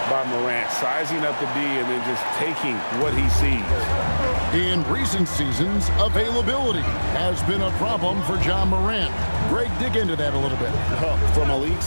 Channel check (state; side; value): inverted; both; correlation -1.00